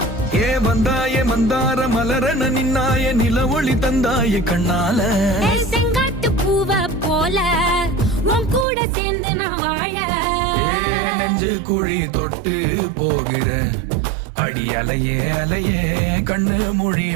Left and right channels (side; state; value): left; drops out; at 8.7 s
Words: ஏ வந்தாய மந்தார மலரன நின்னாய நில ஒளி தந்தாய கண்ணால. செங்காட்டு பூவ போல உன் கூட சேர்ந்து நான் வாழ. நெஞ்சு குழி தொட்டு போகிற அடி அலையே அலையே கண்ணு மொழி